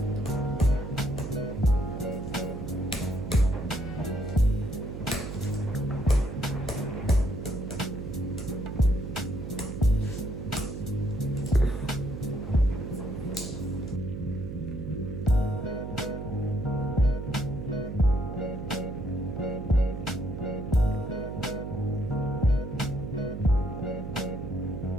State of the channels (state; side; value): noise; right; hum, 7 dB below the sound